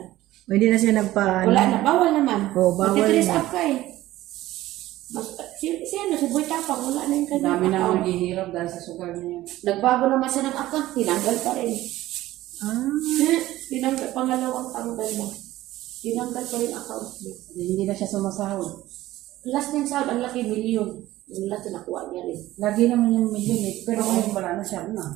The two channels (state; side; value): quieter; left; 15.9 dB